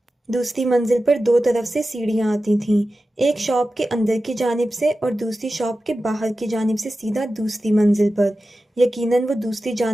دوسری منزل پر 2 طرف سے سیڑھیاں آتی تھیں، ایک شاپ کے اندر کی جانب سے اور دوسری شاپ کے باہر کی جانب سے سیدھا دوسری منزل پر۔ یقیناً وہ دوسری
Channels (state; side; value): normal; both; correlation 0.93